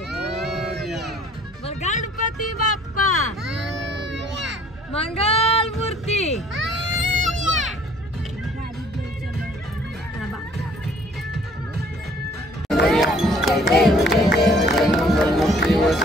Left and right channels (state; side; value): normal; both; correlation 0.57